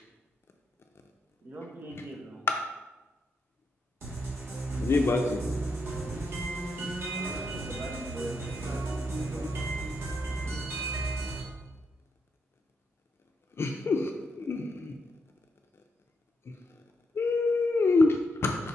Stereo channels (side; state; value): both; normal; correlation 0.81